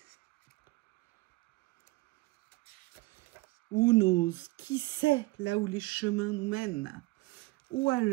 Who knows? Qui sait là où les chemins nous mènent? Ou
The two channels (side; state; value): left; quieter; 21.9 dB